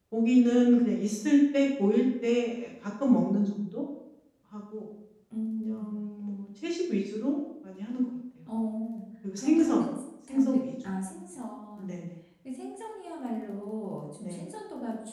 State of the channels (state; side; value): identical; both; correlation 1.00